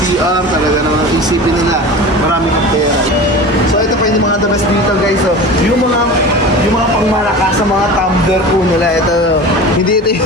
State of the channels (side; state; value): both; normal; correlation 0.34